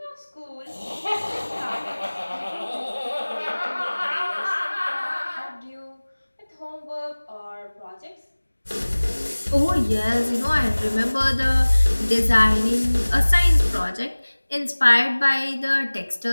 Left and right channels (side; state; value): both; inverted; correlation -1.00